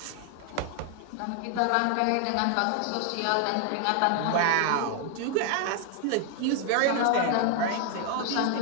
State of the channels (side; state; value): both; different; correlation 0.00